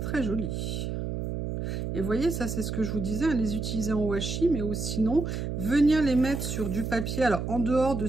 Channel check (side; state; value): right; noise; hum, 3 dB below the sound